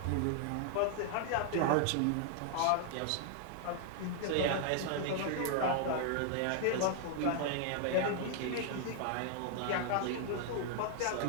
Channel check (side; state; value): both; different; correlation 0.00